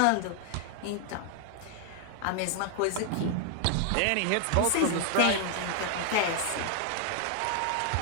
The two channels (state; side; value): different; both; correlation 0.00